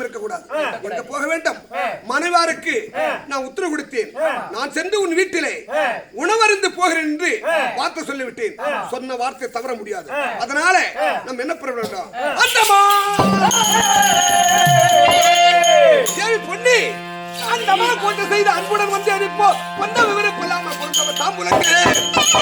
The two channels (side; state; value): both; identical; correlation 1.00